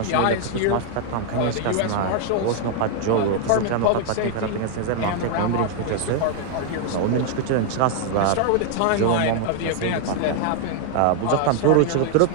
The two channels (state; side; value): different; both; correlation 0.00